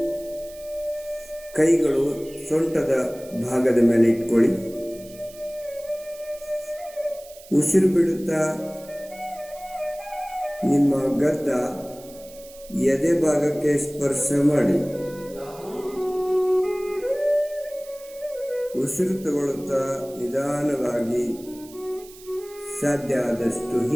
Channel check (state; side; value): noise; right; hiss, 21 dB below the sound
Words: ಕೈಗಳು ಸೊಂಟದ ಭಾಗದ ಮೇಲೆ ಇಟ್ಕೊಳ್ಳಿ. ಉಸಿರು ಬಿಡುತ್ತಾ ನಿಮ್ಮ ಗದ್ದ ಎದೆ ಭಾಗಕ್ಕೆ ಸ್ಪರ್ಶ ಮಾಡಿ. ಉಸಿರು ತಗೊಳ್ಳುತ್ತಾ ನಿಧಾನವಾಗಿ ಸಾಧ್ಯ ಆದಷ್ಟು